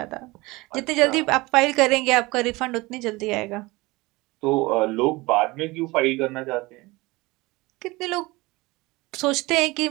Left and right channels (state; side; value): quieter; left; 22.2 dB